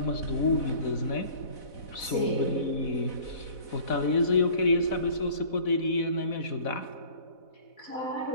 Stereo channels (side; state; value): right; late; 4.1 ms